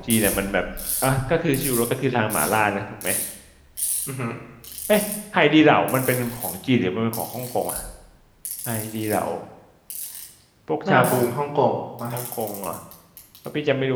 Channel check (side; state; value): both; identical; correlation 1.00